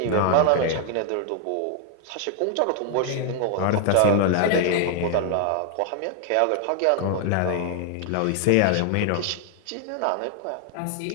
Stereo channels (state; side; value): different; both; correlation 0.00